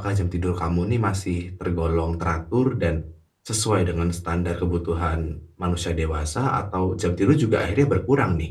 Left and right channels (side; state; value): both; identical; correlation 1.00